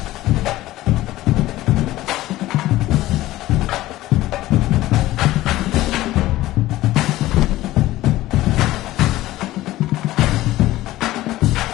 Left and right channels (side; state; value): right; quieter; 16.3 dB